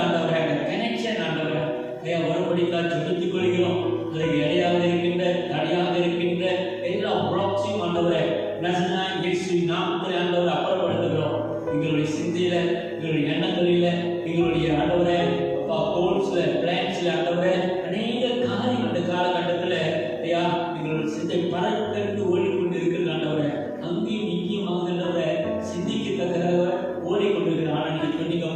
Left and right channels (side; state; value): both; identical; correlation 1.00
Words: ஆண்டவரே அந்த கனெக்ஷன் ஆண்டவரே ஐயா ஒருபடிக்காக செலுத்திக் கொள்கிறோம். அதுக்கு இடையாக இருக்கின்ற தடையாக இருக்கின்ற எல்லா புராட்சியும் ஆண்டவரே நசனாய் இயேசு நாமத்தில் ஆண்டவரை அப்புறப்படுத்துகிறோம். எங்களுடைய சிந்தையில, எங்களுடைய எண்ணங்களில, எங்களுடைய ஆண்டவரே அப்பா கோல்ஸ்ல, பிளான்ஸ்ல ஆண்டவரே அநேக காரியம் அந்த காலகட்டத்தில் ஐயா எங்களுடைய சிந்தை பறக்கென்று ஓடிக்கொண்டு இருக்கிறது ஆண்டவரே. அங்கேயும் இங்கேயும் ஆண்டவரே சிந்திக்கத்தக்கதாக ஓடிக்கொண்டிருக்கிற ஆனால் நீங்க